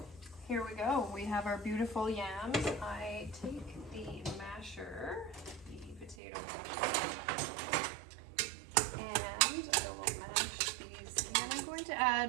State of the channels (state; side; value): drops out; left; at 6.2 s